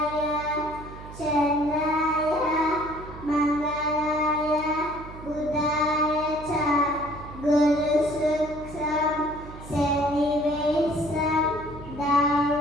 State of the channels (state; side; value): noise; right; hum, 15 dB below the sound